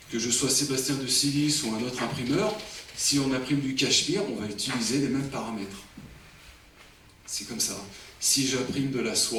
je sois Sébastien de Sillis ou un autre imprimeur, si on imprime du cachemire, on va utiliser les mêmes paramètres. C'est comme ça. Si j'imprime de la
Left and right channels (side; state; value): both; identical; correlation 1.00